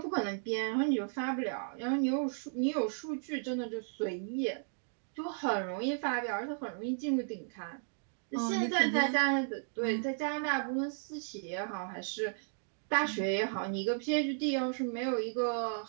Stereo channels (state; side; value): silent; left; digital silence